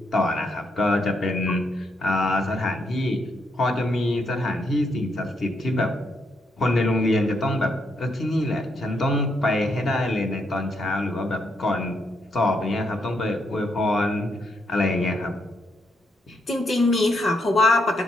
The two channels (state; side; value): normal; both; correlation 0.77